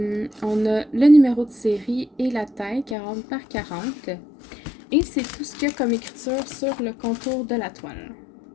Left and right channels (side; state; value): right; drops out; at 3.0 s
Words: a le numéro de série et la taille, 40 par 40. Et c'est tout ce qu'il y a comme écriture sur le contour de la toile.